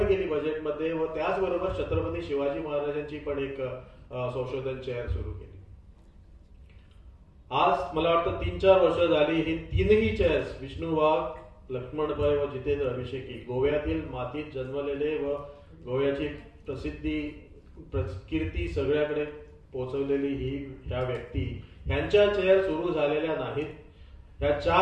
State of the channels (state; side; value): identical; both; correlation 1.00